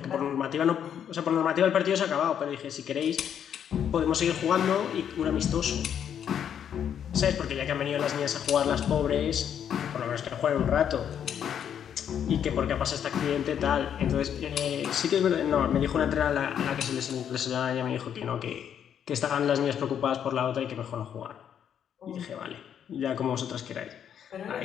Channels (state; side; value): quieter; right; 8.9 dB